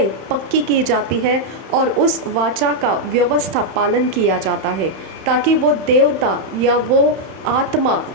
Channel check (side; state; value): left; late; 31 ms